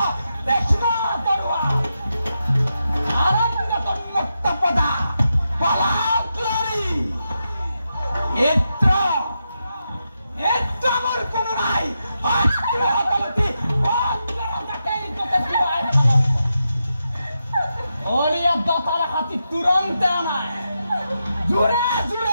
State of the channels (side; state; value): both; inverted; correlation -0.87